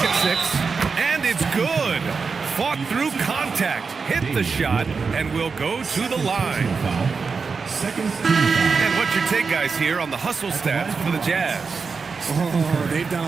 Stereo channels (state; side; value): quieter; left; 5.0 dB